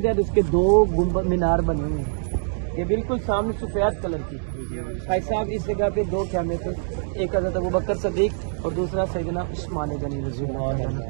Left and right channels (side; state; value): left; silent; digital silence